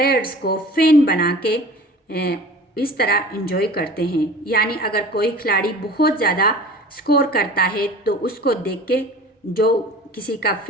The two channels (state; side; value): normal; both; correlation 0.42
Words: को फैन बना के इस तरह एंजॉय करते हैं। यानी अगर कोई खिलाड़ी बहुत ज़्यादा स्कोर करता है तो उसको देख के जो किसी का